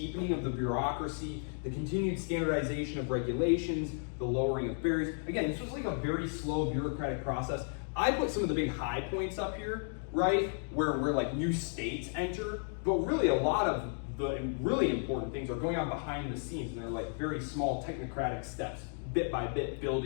of the bureaucracy, the continued standardization of regulations, the lowering of barriers. Again, this was like a very slow bureaucratic process. I put some of the big high points up here, right, where like new states enter, but really a lot of the really important things are going on behind the scenes, and they're like very small technocratic steps, bit by bit,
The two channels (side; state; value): right; silent; 55 dB below the other